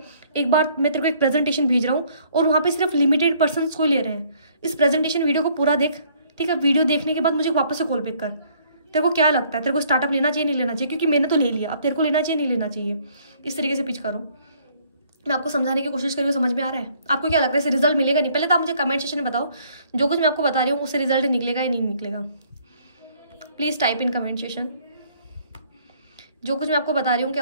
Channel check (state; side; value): inverted; both; correlation -0.62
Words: एक बार मैं तेरे को एक प्रेजेंटेशन भेज रहा हूँ और वहाँ पे सिर्फ लिमिटेड पर्सन्स को ही ले रहे हैं। इस प्रेजेंटेशन वीडियो को पूरा देख, ठीक है। वीडियो देखने के बाद मुझे वापस से कॉल बैक कर, तेरे को क्या लगता है, तेरे को स्टार्टअप लेना चाहिए नहीं लेना चाहिए, क्योंकि मैंने तो ले लिया, अब तेरे को लेना चाहिए नहीं लेना चाहिए। इस तरीके से पिच करो, मैं आपको समझाने की कोशिश करी, समझ में आ रहा है। आपको क्या लगता है इससे रिजल्ट मिलेगा नहीं, पहले तो आप मुझे कमेंट सेक्शन में बताओ, जो कुछ मैं आपको बता रही हूँ उससे रिजल्ट निकलेगा या नहीं निकलेगा। Please type in comment section, जो कुछ मैं आपको बता रही हूँ